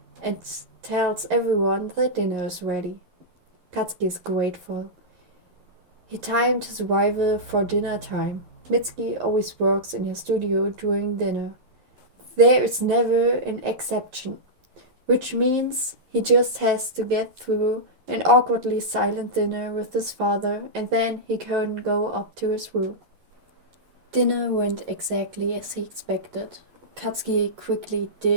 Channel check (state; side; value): late; left; 11 ms